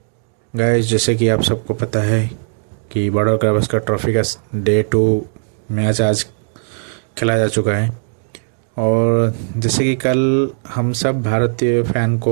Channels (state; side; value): silent; left; digital silence